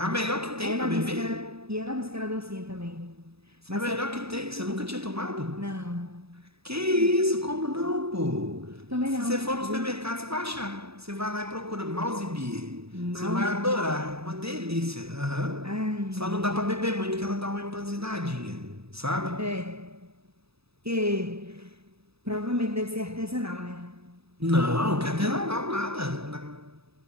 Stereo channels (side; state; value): left; late; 0.78 ms